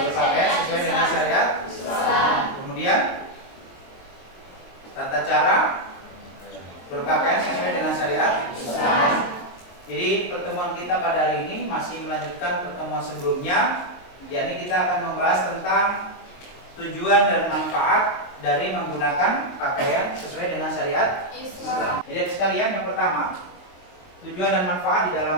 sesuai dengan syariat Islam. Kemudian tata cara berpakaian sesuai dengan syariat Islam. Jadi pertemuan kita pada hari ini masih melanjutkan pertemuan sebelumnya, yakni kita akan membahas tentang tujuan dan manfaat dari menggunakan pakaian sesuai dengan syariat Islam. Jadi sekalian, yang pertama, tujuan dan manfaat di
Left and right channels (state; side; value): late; right; 22 ms